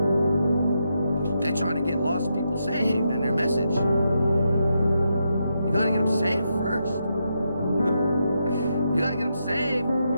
They're trying to get lost people saved in their message. You got to get them saved first. You got to get them saved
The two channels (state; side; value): inverted; both; correlation -0.83